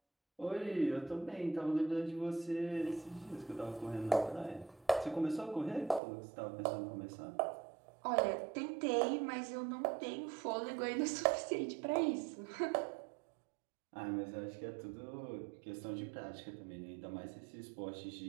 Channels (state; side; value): drops out; left; at 6.0 s